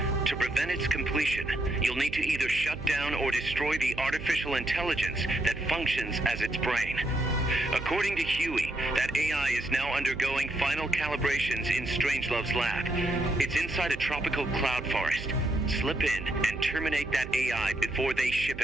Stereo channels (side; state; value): right; noise; hum, 11 dB below the sound